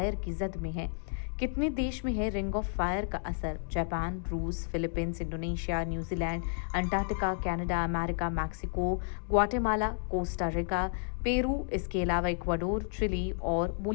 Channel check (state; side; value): silent; right; digital silence